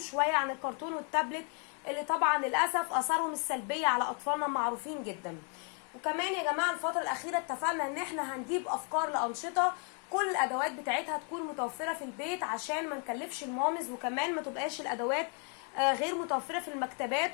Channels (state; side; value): quieter; right; 39.8 dB